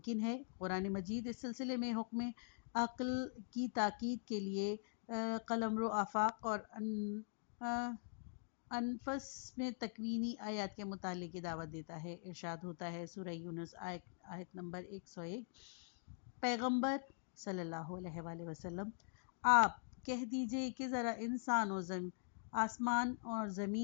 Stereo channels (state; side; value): silent; right; digital silence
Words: ہے؟ قرآن مجید اس سلسلے میں حکم عقل کی تاکید کے لیے قلمرو آفاق اور انفس میں تکوینی آیات کے مطالعے کی دعوت دیتا ہے۔ ارشاد ہوتا ہے سورہ یونس آیت نمبر 101، پیغمبر صلی اللہ علیہ وآلہ وسلم، آپ کہہ دیجئے کہ ذرا انسان و آسمان اور